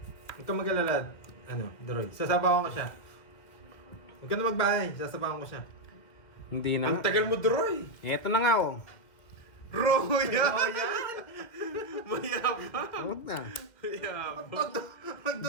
Huwag kang mag-alala. Ano, Droy. Sasabawan ko siya. Huwag ka na magbahay. Sasabawan ko siya. Hindi na Ang nga. tagal mo, Droy. Eto na nga oh. Roya! Oh, yan! Mayabang. Huwag na. Mayabang.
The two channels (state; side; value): late; right; 2.1 ms